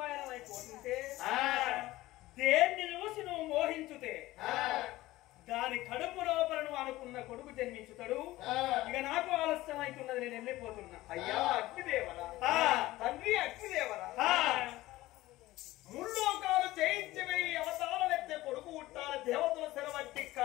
పయనమైపోతుంటే దేన్ని చూసి నువ్వు మోహించుతే దాని కడుపు లోపల నువ్వు అనుకున్న కొడుకు జన్మించుతాడు. ఇక నాకు ఆలస్యం అవుతున్నది, నేను వెళ్ళిపోతున్నా. అయ్యా అగ్నిదేవరా, తండ్రి అగ్నిదేవరా, ముల్లోకాలు జయించవే అవతారం ఎత్తే కొడుకు పుట్టాల దేవతల సెలవట్టి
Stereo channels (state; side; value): quieter; right; 17.3 dB